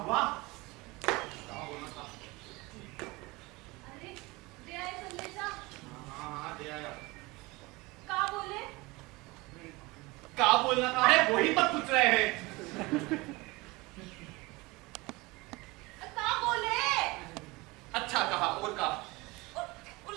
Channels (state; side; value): quieter; left; 23.2 dB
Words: अरे दे आए संदेशा। हाँ दे आया। का बोले? क्या बोलना था? अरे वही पर पूछ रहे हैं। का बोले? अच्छा कहा, और कहा? वो